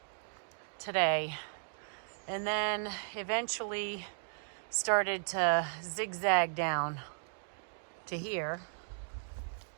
today, and then eventually started to zigzag down to here,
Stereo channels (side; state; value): left; silent; digital silence